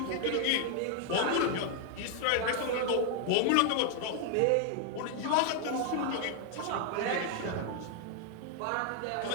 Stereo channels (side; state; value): both; different; correlation 0.00